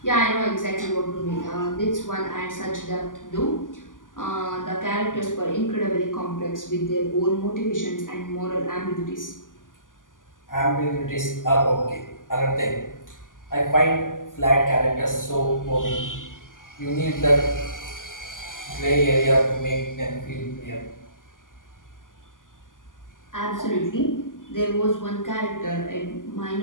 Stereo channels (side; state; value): right; late; 0.88 ms